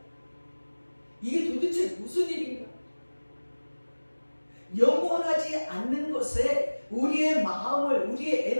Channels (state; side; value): inverted; both; correlation -1.00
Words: 이게 도대체 무슨 일인가? 영원하지 않는 것에 우리의 마음을 우리의